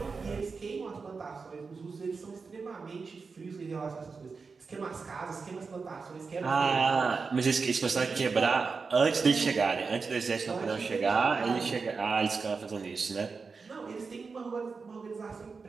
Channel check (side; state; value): left; quieter; 4.8 dB